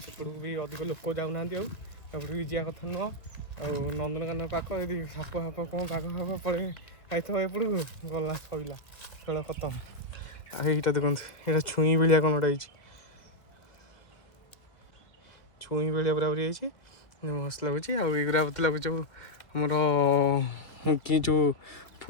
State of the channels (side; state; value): right; late; 2.1 ms